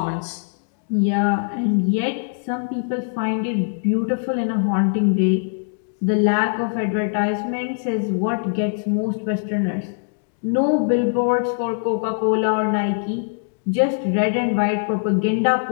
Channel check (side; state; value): right; silent; digital silence